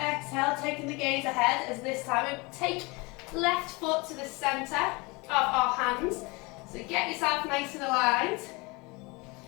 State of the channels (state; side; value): quieter; right; 26.3 dB